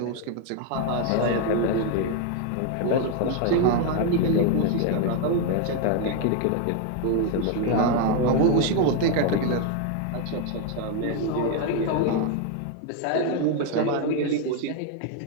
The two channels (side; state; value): both; different; correlation 0.01